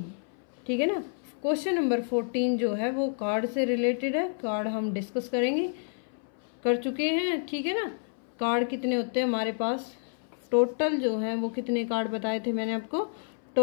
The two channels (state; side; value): silent; right; 58 dB below the other